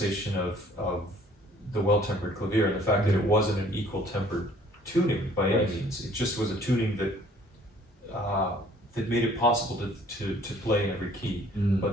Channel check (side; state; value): both; normal; correlation 0.57